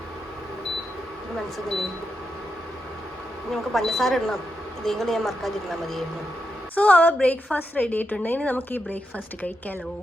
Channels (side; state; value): both; normal; correlation 0.85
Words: നമുക്ക് പഞ്ചസാര ഇടണം, ഇതേം കൂടെ ഞാൻ മറക്കാതിരുന്നാൽ മതിയായിരുന്നു. സോ അവർ ബ്രേക്ക്ഫാസ്റ്റ് റെഡി ആയിട്ടുണ്ട്. ഇനി നമുക്ക് ഈ ബ്രേക്ക്ഫാസ്റ്റ് കഴിക്കാമല്ലോ.